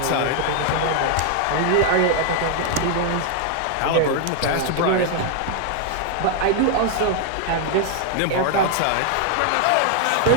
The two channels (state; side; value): different; both; correlation 0.00